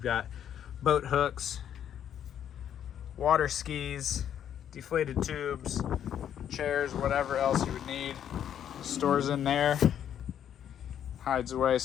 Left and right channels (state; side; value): quieter; right; 9.7 dB